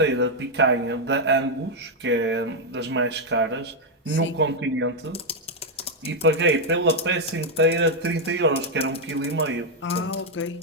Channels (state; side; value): normal; both; correlation 0.00